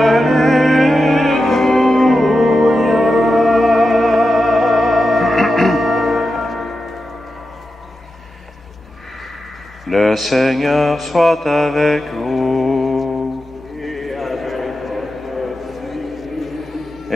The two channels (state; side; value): normal; both; correlation 0.90